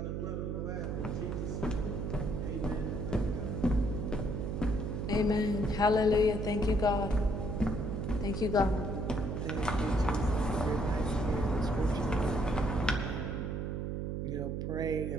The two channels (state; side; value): noise; right; hum, 2 dB below the sound